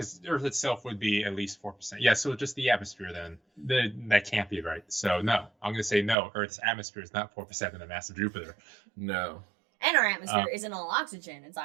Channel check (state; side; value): drops out; left; at 6.2 s